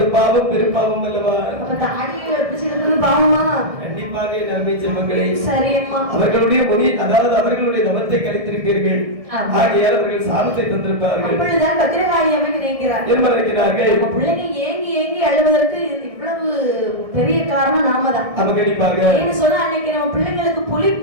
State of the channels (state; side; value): late; left; 1.6 ms